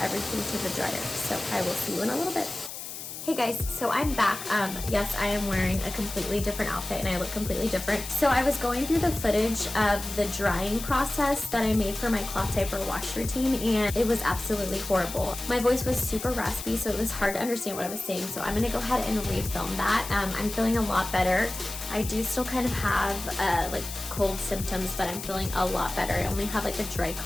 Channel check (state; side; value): noise; left; hiss, 9 dB below the sound